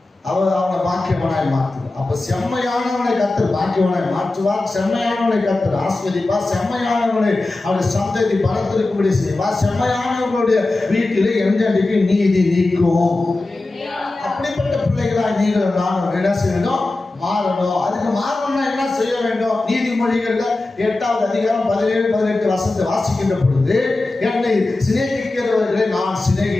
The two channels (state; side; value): quieter; right; 3.0 dB